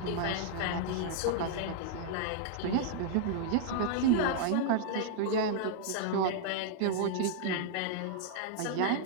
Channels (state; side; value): different; both; correlation -0.01